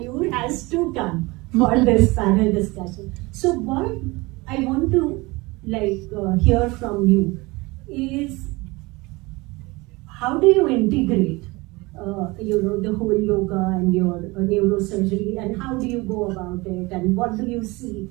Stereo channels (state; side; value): quieter; left; 23.4 dB